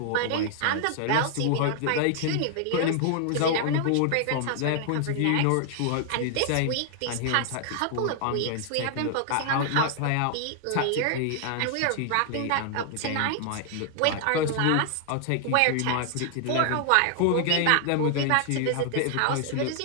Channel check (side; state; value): both; different; correlation 0.00